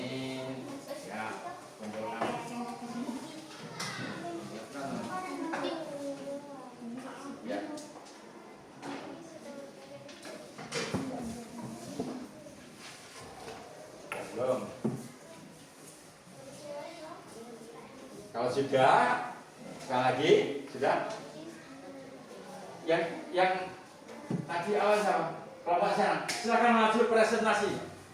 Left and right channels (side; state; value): both; identical; correlation 1.00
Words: Belum. Kalau sudah, sekali lagi, sudah. Yang tadi awal sama kelompok sana, silakan maju presentasi.